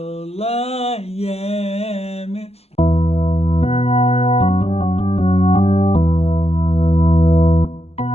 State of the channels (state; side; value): late; right; 0.29 ms